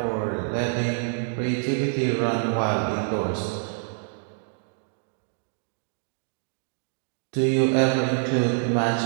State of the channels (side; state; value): left; silent; 61 dB below the other